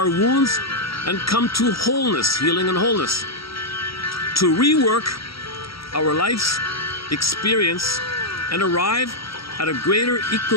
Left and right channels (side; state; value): right; late; 0.75 ms